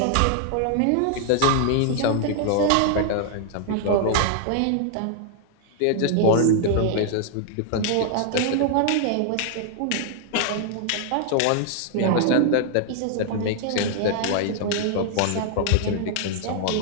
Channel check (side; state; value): both; different; correlation -0.01